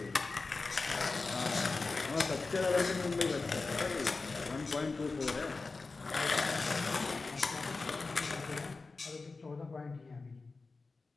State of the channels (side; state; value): right; quieter; 3.9 dB